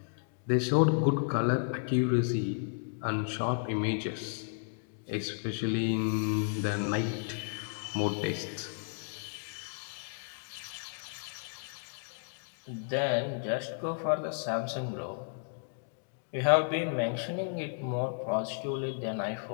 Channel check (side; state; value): right; silent; digital silence